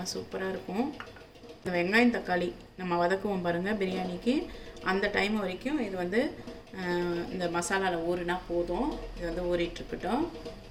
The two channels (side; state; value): both; identical; correlation 1.00